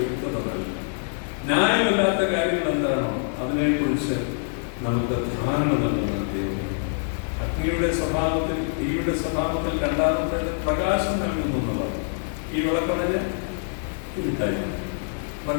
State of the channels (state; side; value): silent; right; 62 dB below the other